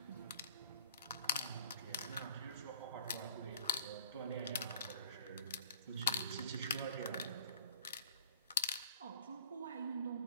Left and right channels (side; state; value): both; inverted; correlation -0.48